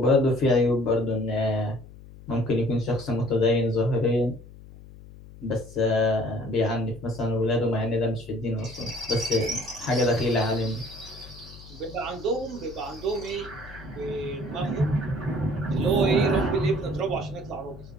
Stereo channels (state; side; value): noise; left; hum, 18 dB below the sound